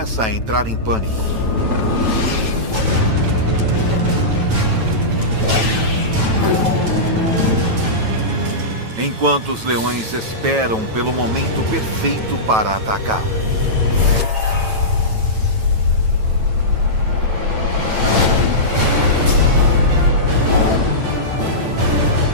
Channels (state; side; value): late; left; 9.1 ms